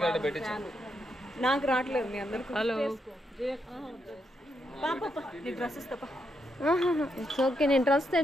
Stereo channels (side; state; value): both; normal; correlation 0.80